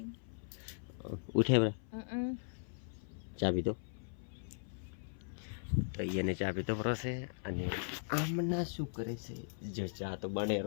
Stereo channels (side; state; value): right; silent; 52 dB below the other